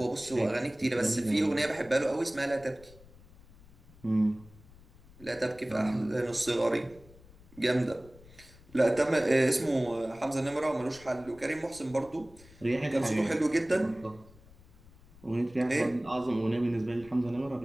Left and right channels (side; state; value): left; noise; rumble, 23 dB below the sound